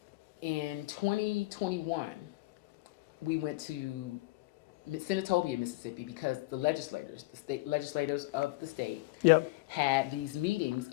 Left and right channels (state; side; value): quieter; right; 20.9 dB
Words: In 2021, we went to Senatobia, Mississippi, because the state legislators of the state had these meetings